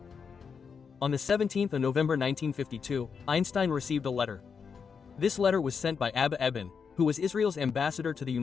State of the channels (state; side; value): quieter; right; 6.1 dB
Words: On the 17th of November 1952, Einstein received a letter. This letter was sent by Abba Eban, who was Israel's ambassador to the